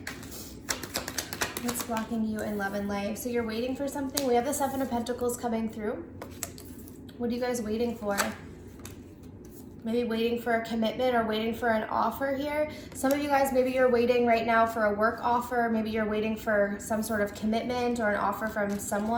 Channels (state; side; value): identical; both; correlation 1.00